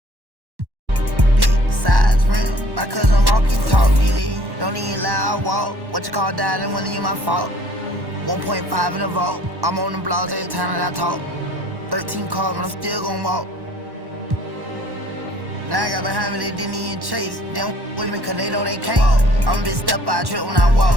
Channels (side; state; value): left; late; 1.1 ms